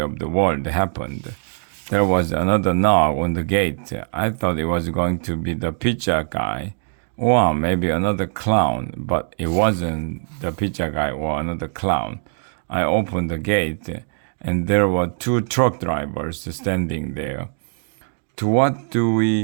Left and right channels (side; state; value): left; silent; digital silence